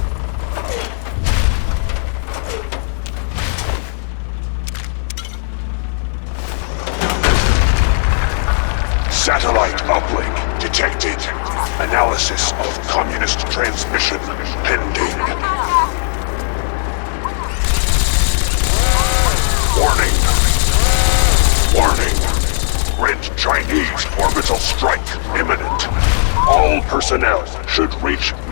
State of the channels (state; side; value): silent; right; digital silence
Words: Satellite uplink detected. Analysis of communist transmission pending. Warning. Warning. Red Chinese orbital strike imminent. All personnel should reach